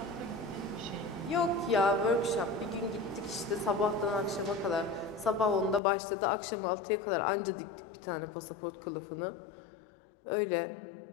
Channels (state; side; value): drops out; right; at 5.8 s